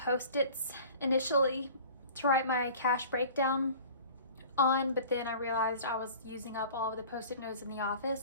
initially to write my cash breakdown on, but then I realized I was using up all of the Post-it notes in the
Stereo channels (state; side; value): inverted; both; correlation -0.43